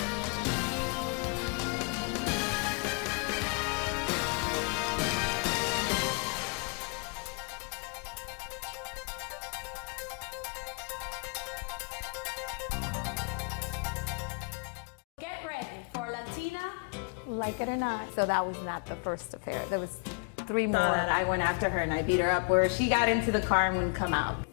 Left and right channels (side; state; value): right; quieter; 37.7 dB